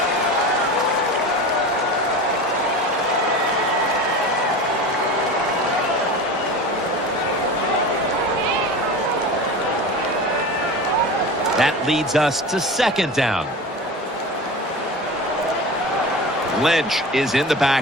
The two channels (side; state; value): both; normal; correlation 0.31